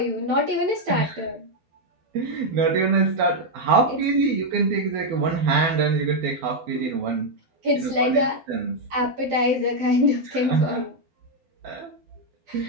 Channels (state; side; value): late; left; 12 ms